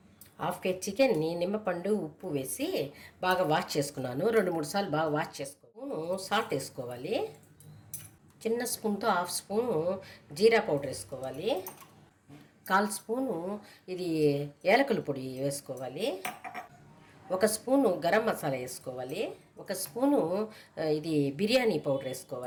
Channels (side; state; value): both; identical; correlation 1.00